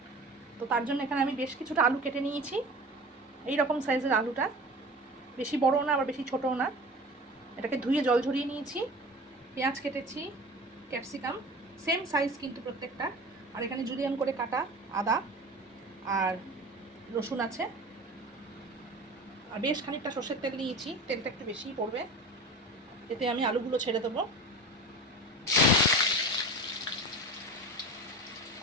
তো তার জন্য এখানে আমি বেশ কিছুটা আলু কেটে নিয়েছি। এই রকম সাইজের আলুটা, বেশি বড়ও না আবার বেশি ছোটও না। এটাকে ধুয়ে জল ঝরিয়ে নিয়েছি। পেঁয়াজ কেটেছি, ক্যাপসিকাম সেম সাইজ কিন্তু প্রত্যেকটা। আর এখানে জুলিয়ান করে কাটা আদা আর রসুন আছে। আর বেশ খানিকটা সর্ষের তেল নিয়েছি, তেলটা একটু বেশিই পড়বে। এতে আমি আলুগুলো ছেড়ে দেবো।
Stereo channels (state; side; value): normal; both; correlation 0.35